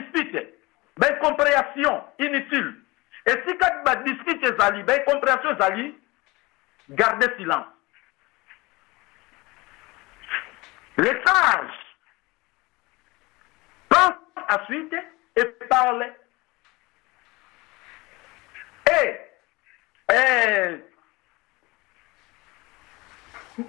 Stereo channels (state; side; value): quieter; right; 22.8 dB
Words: ba incompréhension inutile. Et si quand tu discutes tes alliés, ben compréhension tes alliés, gardez silence. Les sages pensent ensuite et parlent.